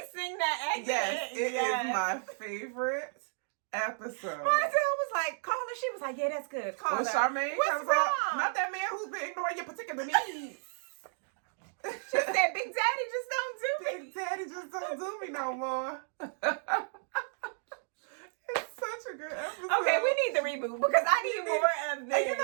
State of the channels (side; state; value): left; silent; digital silence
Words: sing that accent. Yes, it is my favorite episode. Marcel was like, call her. She was like, yeah, that's good. Call her. Charmaine What's comes wrong? up. Not that man who's been ignoring your particular needs. She said, Big Daddy just don't do me. Big Daddy just don't do me no more. It's such a good episode. Okay, we need the reboot because I need more of this. And you